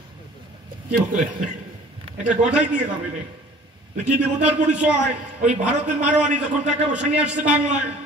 কি বলে? এটা গঠাই দিয়ে যাবে রে। কি দেবতার পরিচয়? ওই ভারতের মারোয়ারি যখন টাকা পয়সা নিয়ে আসছে বাংলায়,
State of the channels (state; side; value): normal; both; correlation 0.49